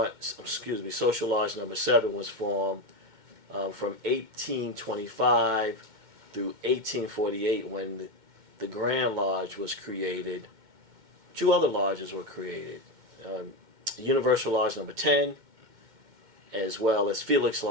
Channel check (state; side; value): late; left; 2.1 ms